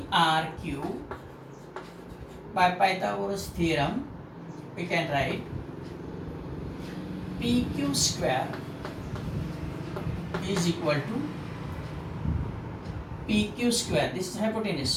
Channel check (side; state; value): both; identical; correlation 1.00